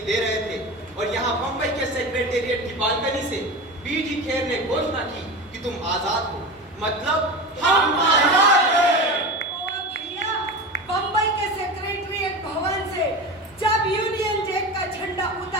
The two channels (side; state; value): both; normal; correlation 0.27